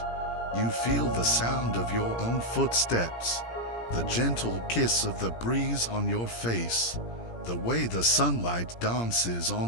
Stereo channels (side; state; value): right; late; 17 ms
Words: You feel the sound of your own footsteps, the gentle kiss of the breeze on your face, the way the sunlight dances